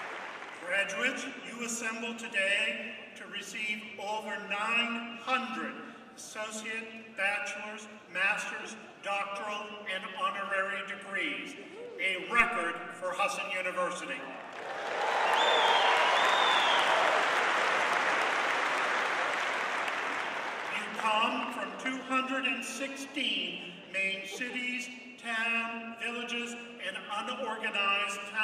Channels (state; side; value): identical; both; correlation 1.00